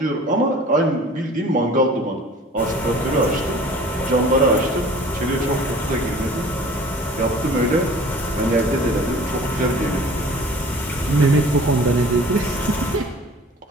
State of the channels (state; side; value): normal; both; correlation 0.46